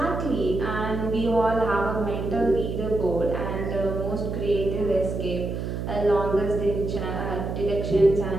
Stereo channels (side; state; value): right; noise; hum, 4 dB below the sound